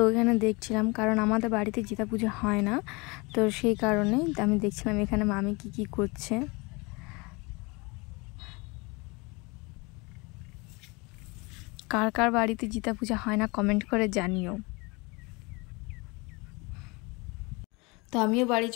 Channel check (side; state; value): right; quieter; 27.0 dB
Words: এখানে দেখছিলাম, কারণ আমাদের বাড়িতে জিতা পূজা হয় না, তো সেই কারণে আমি দেখছিলাম এখানে মামি কি করছে। কার কার বাড়িতে জিতা পূজা হয় না কমেন্ট করে জানিও। তো আমিও বাড়ি